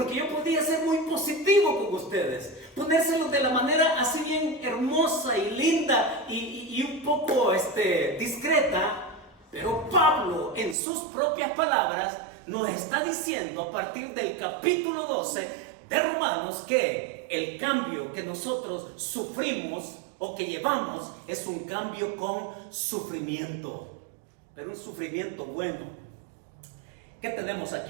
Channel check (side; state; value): left; drops out; at 10.8 s